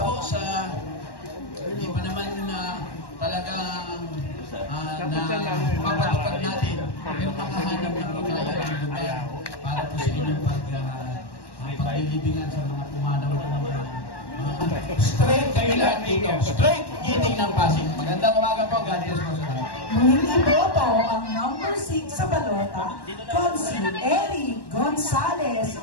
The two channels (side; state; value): right; late; 1.1 ms